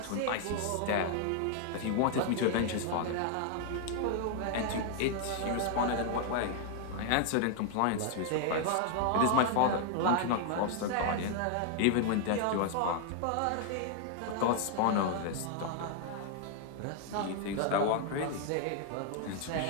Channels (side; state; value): both; different; correlation 0.00